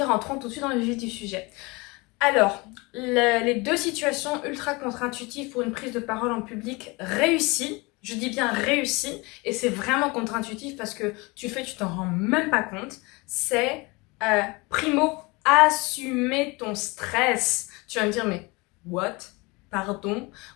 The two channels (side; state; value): right; quieter; 25.6 dB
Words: rentrons tout de suite dans le vif du sujet. Alors, les deux situations ultra contre-intuitives pour une prise de parole en public réussie, je dis bien réussie, et c'est vraiment contre-intuitif parce que tu t'en rends même pas compte, c'est primo, assumer ton stress. Tu vas me dire, mais what? Pardon?